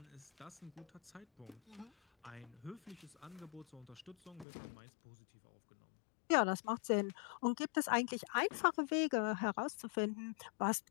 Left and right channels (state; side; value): drops out; right; at 4.5 s